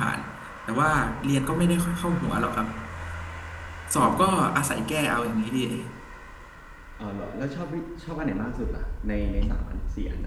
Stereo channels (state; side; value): identical; both; correlation 1.00